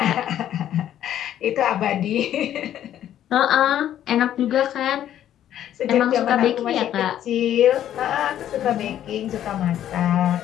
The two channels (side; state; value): right; quieter; 11.2 dB